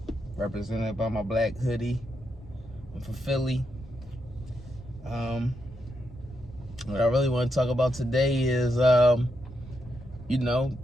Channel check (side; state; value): both; normal; correlation 0.82